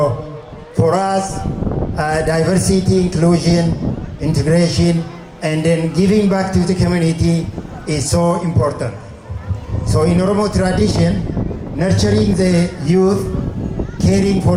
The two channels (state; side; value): identical; both; correlation 1.00